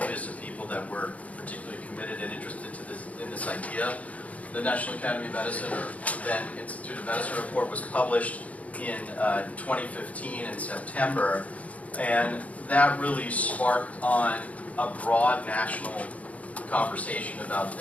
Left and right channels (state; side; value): late; right; 0.068 ms